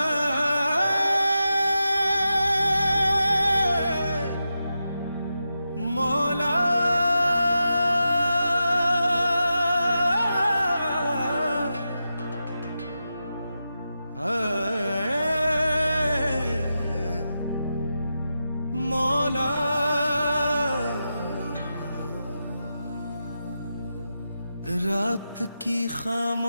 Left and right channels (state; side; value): inverted; both; correlation -0.89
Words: मौला। रात की